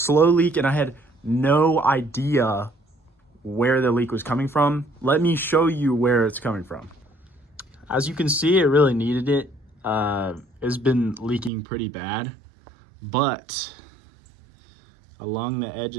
leak and I had no idea where the leak was coming from. Let me show you where it's coming from. As you can see, it really needed it. It's been leaking pretty bad, but along the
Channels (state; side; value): drops out; left; at 11.5 s